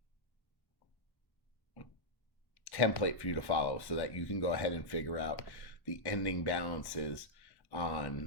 template for you to follow so that you can go ahead and figure out the ending balances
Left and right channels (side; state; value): right; late; 1.1 ms